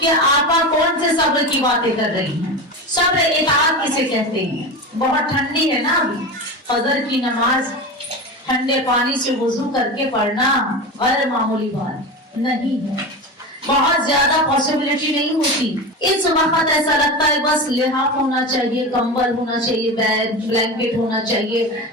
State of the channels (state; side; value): normal; both; correlation 0.25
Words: آپ کون سے صبر کی باتیں کر رہی ہیں. صبر اطاعت کسے کہتے ہیں؟ بہت ٹھنڈی ہے نا ابھی، فجر کی نماز ٹھنڈے پانی سے وضو کر کے پڑھنا غیر معمولی بات نہیں ہے، بہت زیادہ پاسبلٹی نہیں ہوتی. اس وقت ایسا لگتا ہے بس لحاف ہونا چاہیے، کمبل ہونا چاہیے، بلینکٹ ہونا چاہیے،